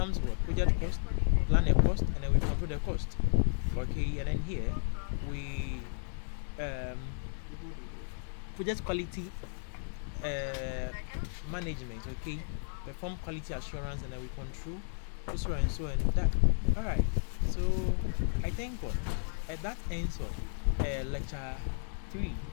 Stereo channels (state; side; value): silent; right; digital silence